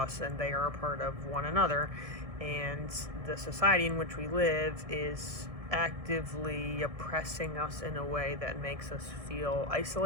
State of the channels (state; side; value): late; left; 1.6 ms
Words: and they are a part of one another. And the society in which we live is actively oppressing us in a way that makes us feel